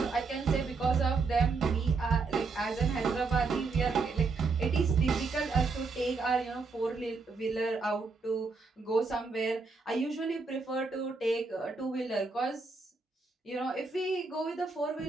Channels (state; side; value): quieter; left; 4.2 dB